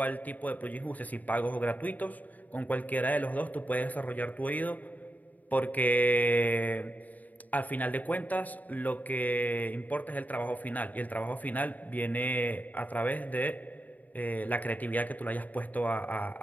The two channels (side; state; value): right; late; 0.078 ms